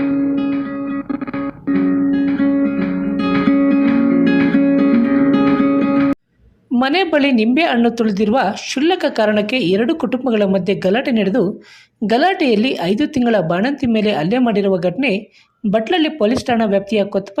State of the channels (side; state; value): both; identical; correlation 1.00